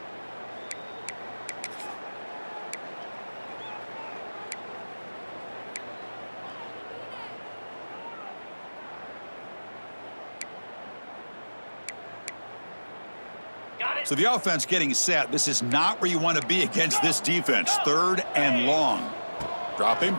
So the offense getting set. This is not where you want to be against this defense. Third and long. Dropping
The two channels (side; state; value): both; inverted; correlation -1.00